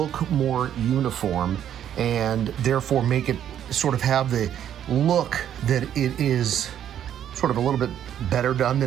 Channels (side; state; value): left; quieter; 10.1 dB